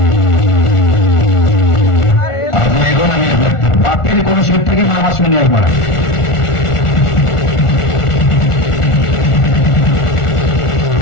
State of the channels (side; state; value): right; late; 1.4 ms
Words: আপনি এখন আমি বাপের কোন সিট থেকে মামা শুনে একবার